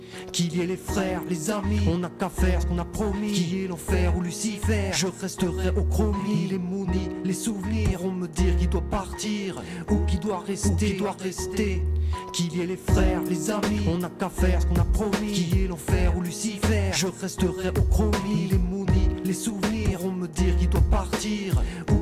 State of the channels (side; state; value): both; identical; correlation 1.00